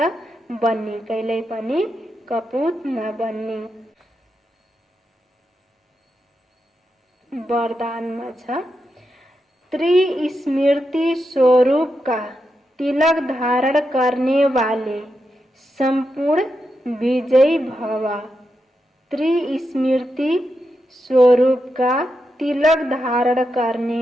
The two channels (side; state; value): both; normal; correlation 0.86